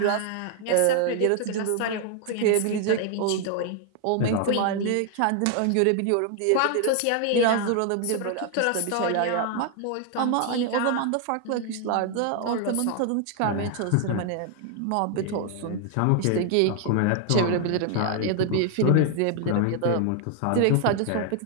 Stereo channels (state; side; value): different; both; correlation 0.00